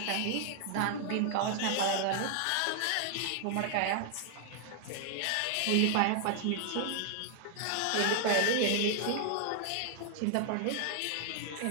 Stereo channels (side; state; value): both; different; correlation 0.00